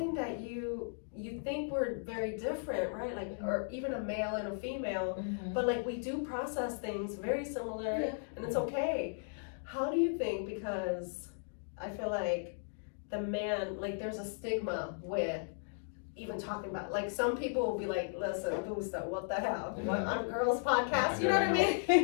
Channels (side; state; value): right; silent; digital silence